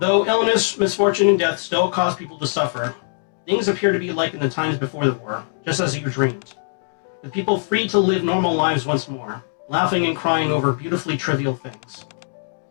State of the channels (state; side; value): silent; right; digital silence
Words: illness, misfortune, and death still cause people to suffer, things appear to be like in the times before the war, just as you dreamed. With people free to live normal lives once more, laughing and crying over beautifully trivial things.